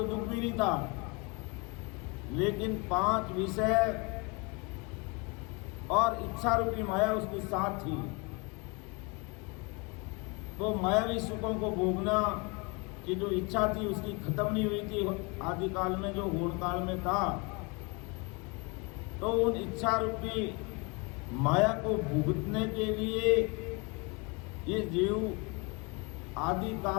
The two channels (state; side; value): quieter; right; 29.5 dB